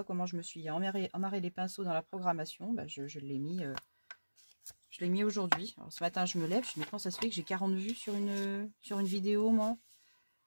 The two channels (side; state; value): both; inverted; correlation -1.00